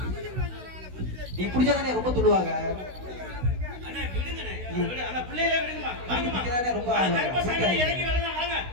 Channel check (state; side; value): late; left; 16 ms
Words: நீ பிடிச்சாதானே ரொம்ப துள்ளுவாங்க. அண்ணே விடுங்கனே. அந்த பிள்ளைகளை விடுங்கமா. வாங்கமா. ரொம்ப கருப்பசாமி இறங்கி வரலாம் வாங்க.